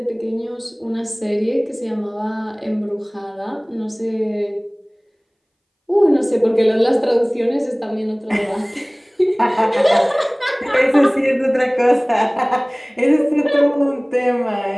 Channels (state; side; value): identical; both; correlation 1.00